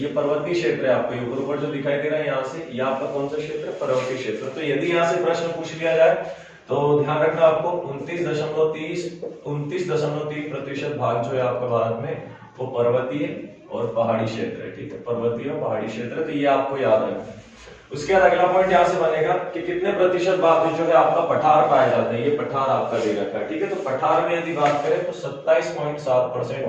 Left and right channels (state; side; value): identical; both; correlation 1.00